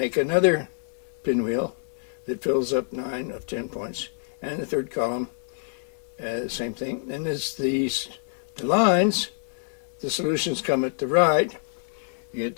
another pinwheel that fills up 9 of 10 points. And the third column, same thing. And as the lines, the solutions come at the right. You get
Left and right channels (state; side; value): silent; right; digital silence